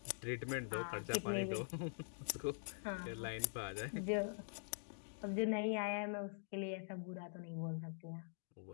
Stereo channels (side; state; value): right; silent; digital silence